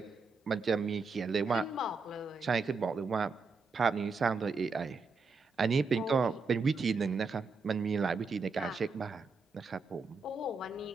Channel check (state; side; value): quieter; left; 4.3 dB